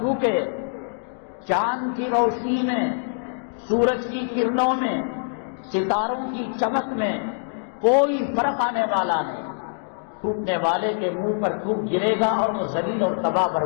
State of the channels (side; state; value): right; silent; digital silence